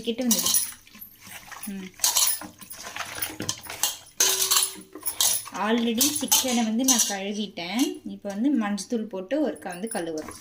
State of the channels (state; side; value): identical; both; correlation 1.00